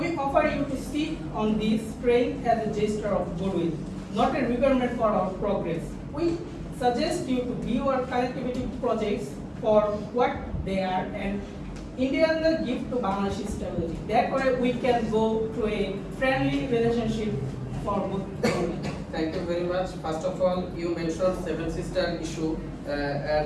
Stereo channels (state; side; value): identical; both; correlation 1.00